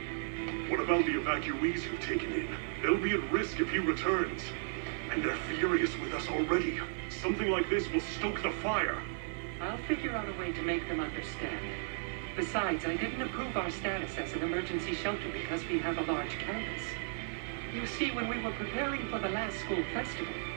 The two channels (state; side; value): silent; left; 55 dB below the other